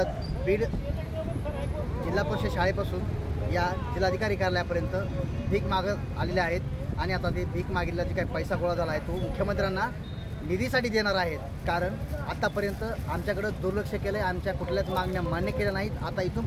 बीड जिल्हा परिषद शाळेपासून या जिल्हाधिकारी कार्यालयापर्यंत भीक मागत आलेले आहेत आणि आता ते भीक मागितला जे काही पैसा गोळा झाला आहे तो मुख्यमंत्र्यांना निधीसाठी देणार आहेत। कारण आतापर्यंत आमच्याकडं दुर्लक्ष केलं आहे, आमच्या कुठल्याच मागण्या मान्य केल्या नाहीत। आता इथून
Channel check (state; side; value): identical; both; correlation 1.00